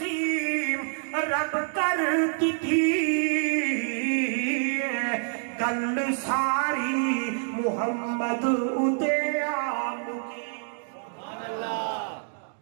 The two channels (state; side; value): silent; left; 60 dB below the other